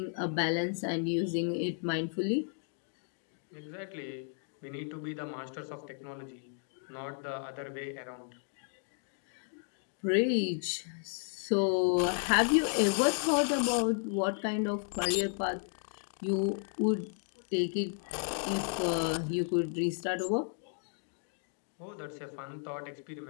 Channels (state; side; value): silent; right; 55 dB below the other